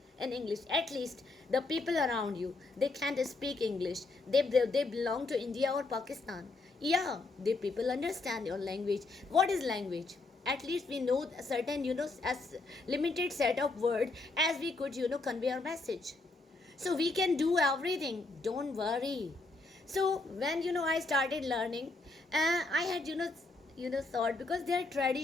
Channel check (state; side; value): quieter; right; 3.4 dB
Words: in English. At least the people around you, they can't speak English. They belong to India or Pakistan. Yeah, they people understand your language. What is language? At least we know a certain as limited set of word as we could convey our message. So we can do everything. Don't worry. So when I started learning, I had thought, because their